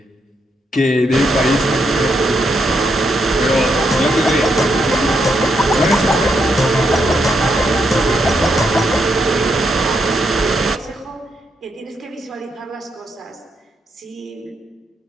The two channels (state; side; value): normal; both; correlation 0.79